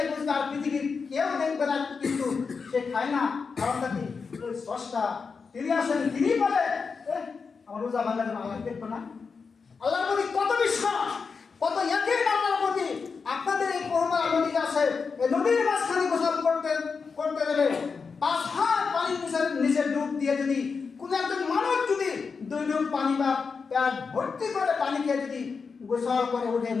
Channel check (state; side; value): quieter; right; 5.2 dB